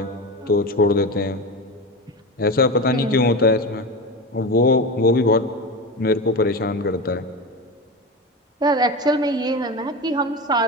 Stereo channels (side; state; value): both; normal; correlation 0.24